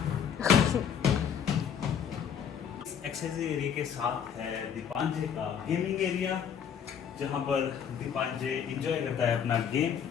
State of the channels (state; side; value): quieter; right; 7.9 dB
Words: एक्सरसाइजिंग एरिया के साथ है दीपांजे का गेमिंग एरिया, जहाँ पर दीपांजे एंजॉय करता है अपना गेम।